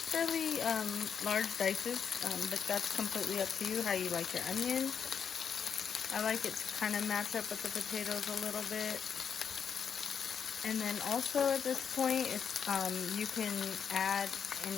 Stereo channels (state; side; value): quieter; right; 7.2 dB